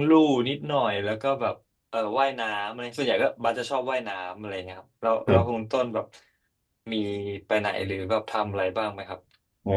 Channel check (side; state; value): both; identical; correlation 1.00